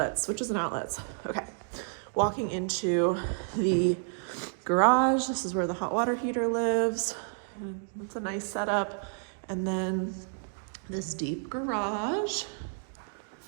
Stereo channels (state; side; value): silent; left; digital silence